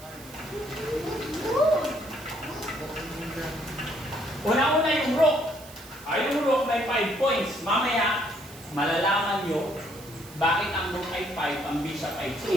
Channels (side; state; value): right; noise; hiss, 19 dB below the sound